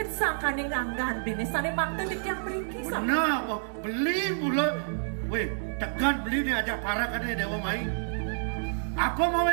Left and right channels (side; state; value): left; silent; digital silence